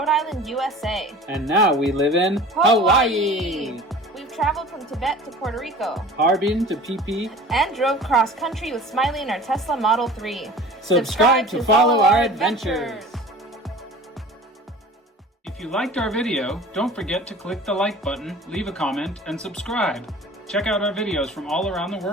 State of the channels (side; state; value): both; normal; correlation 0.42